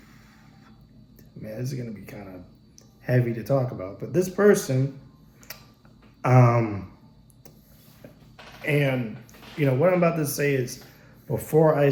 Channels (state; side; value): identical; both; correlation 1.00